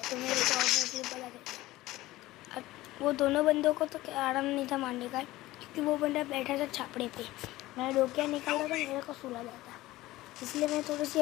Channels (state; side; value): quieter; right; 17.5 dB